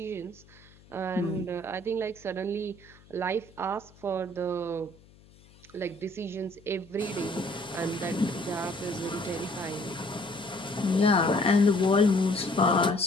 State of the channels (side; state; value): left; noise; hum, 26 dB below the sound